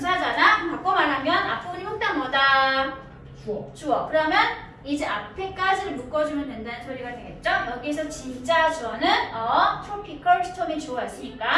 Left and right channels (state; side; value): identical; both; correlation 1.00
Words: 그럼 바꿔 말하면 앞부분이 몽땅 뭐다? 주어. 그러면 이제 앞에까지를 묶어주면 된다는 소리가 되겠죠? 여기서 진짜 주어는 tropical storm이 주어였으니까